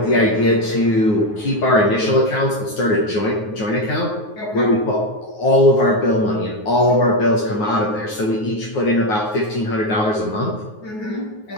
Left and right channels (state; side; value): late; right; 9.5 ms